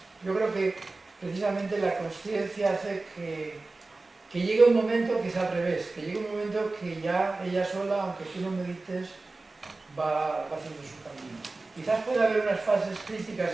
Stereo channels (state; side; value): quieter; left; 3.4 dB